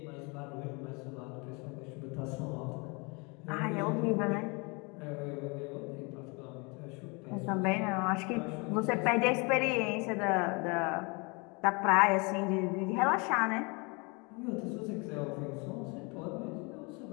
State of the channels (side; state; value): right; quieter; 30.1 dB